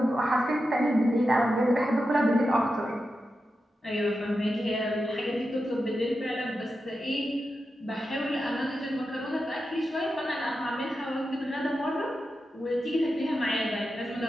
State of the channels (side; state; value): both; normal; correlation 0.90